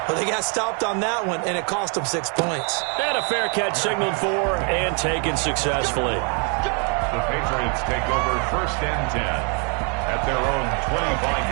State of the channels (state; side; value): quieter; left; 38.0 dB